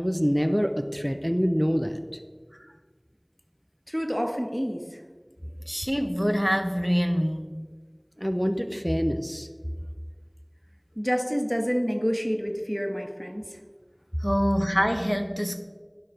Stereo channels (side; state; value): both; identical; correlation 1.00